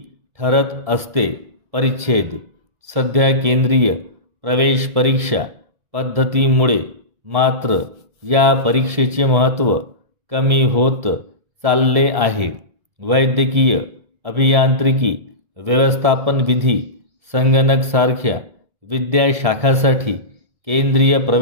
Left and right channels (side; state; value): left; late; 1.7 ms